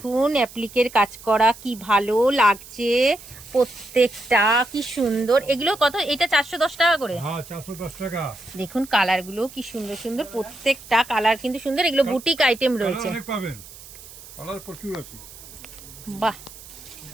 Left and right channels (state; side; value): noise; right; hiss, 18 dB below the sound